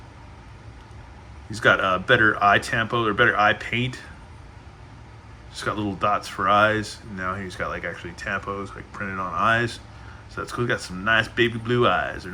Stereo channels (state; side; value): identical; both; correlation 1.00